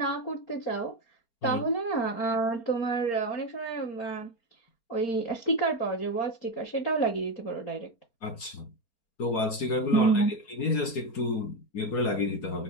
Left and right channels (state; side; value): late; right; 4.3 ms